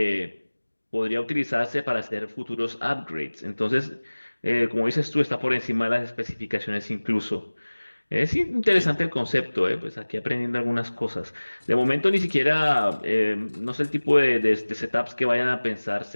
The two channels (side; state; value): both; inverted; correlation -1.00